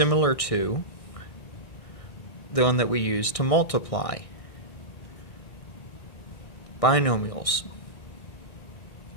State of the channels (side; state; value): right; late; 1.6 ms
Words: to the one that we use to multiply binomials.